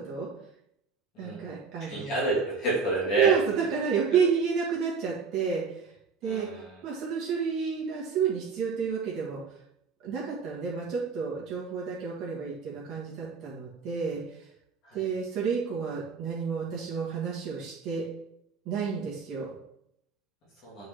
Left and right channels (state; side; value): quieter; left; 5.2 dB